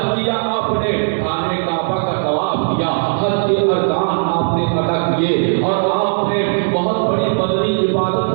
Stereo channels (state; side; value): silent; left; 66 dB below the other